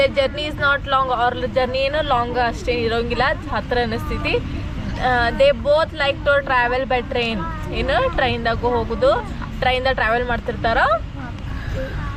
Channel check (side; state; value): both; identical; correlation 1.00